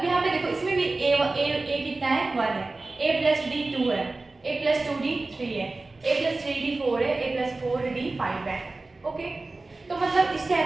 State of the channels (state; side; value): quieter; left; 3.3 dB